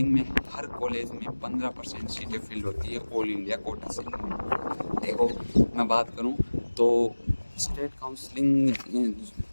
में हर कॉलेज में 15% सीटें फिल होती है ऑल इंडिया कोटा से। देखो, मैं बात करूं तो स्टेट काउंसलिंग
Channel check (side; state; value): both; inverted; correlation -1.00